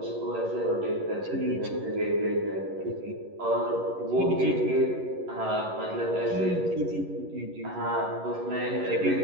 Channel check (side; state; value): left; late; 11 ms